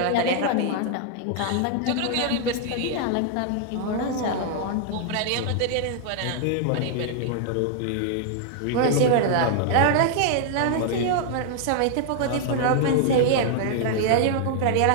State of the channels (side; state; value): both; different; correlation -0.01